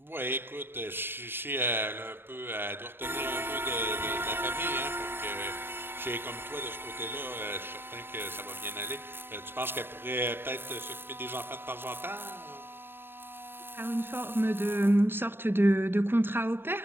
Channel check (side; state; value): left; late; 0.10 ms